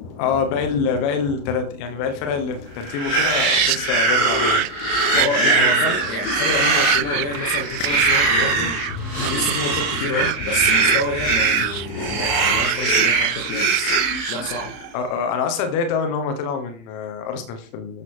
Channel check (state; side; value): late; right; 35 ms